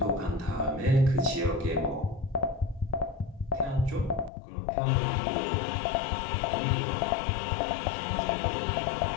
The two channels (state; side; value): drops out; right; at 4.3 s